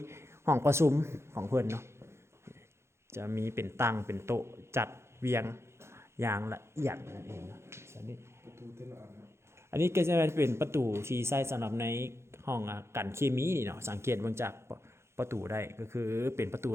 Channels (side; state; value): left; late; 0.13 ms